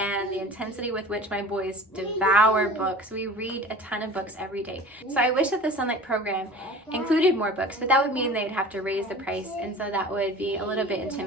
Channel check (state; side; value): normal; both; correlation 0.40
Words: the intensity with which my boys devour books. We read a ton of books every day. So I wish that the Sonlight program included more books, but that would mean they'd have to raise the price, and so that would be a little bit